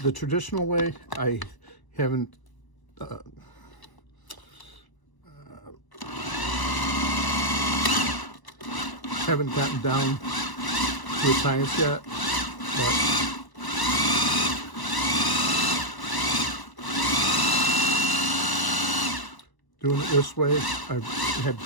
traditional way, I haven't gotten down to the science yet, but doing it this way, I've had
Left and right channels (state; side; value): late; right; 1.0 ms